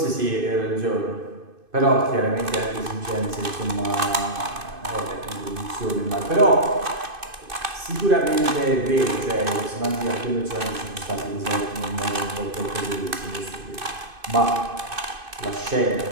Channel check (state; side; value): late; left; 2.5 ms